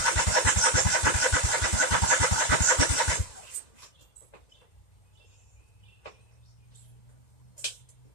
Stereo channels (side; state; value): right; late; 2.0 ms